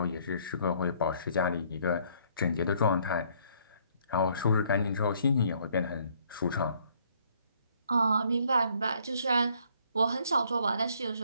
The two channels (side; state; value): both; inverted; correlation -0.65